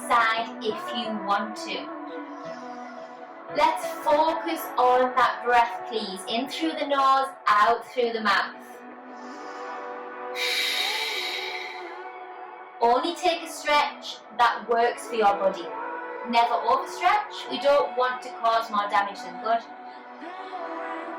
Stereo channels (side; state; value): both; identical; correlation 1.00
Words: side if you want to. Let's focus on that breath, please. In through the nose, out through the mouth. Only take a stretch that works for your body. Never overstretch. We don't want to cause more damage than good.